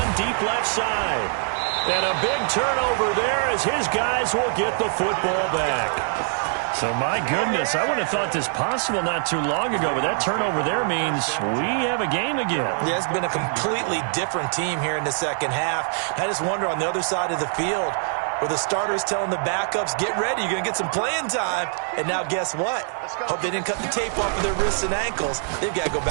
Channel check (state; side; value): silent; left; 63 dB below the other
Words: deep left side. And a big turnover there as his guys will get the football back. So, my goodness, I would have thought this possible not too long ago, but that turnover there means we have a game again. Yeah, it's been a completely different team here in the second half. I just wonder on the other side of the field where the starters telling the backups, get ready, you're going to get some playing time. And now guess what? Hope they didn't cut the tape off of their wrists and ankles. They've got to go